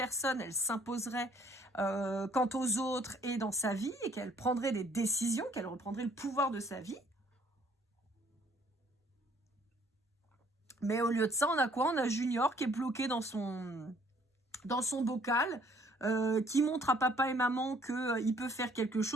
elle s'imposerait quant aux autres et dans sa vie, et qu'elle prendrait des décisions, qu'elle reprendrait le pouvoir de sa vie. Mais au lieu de ça, on a quoi? On a Junior qui est bloqué dans son bocal, qui montre à papa et maman qu'il peut faire quelque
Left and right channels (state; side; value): normal; both; correlation 0.61